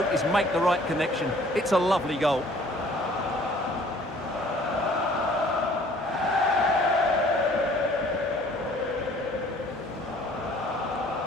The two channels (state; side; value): normal; both; correlation 0.55